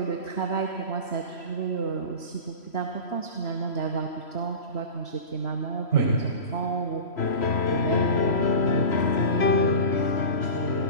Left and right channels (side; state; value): right; late; 3.0 ms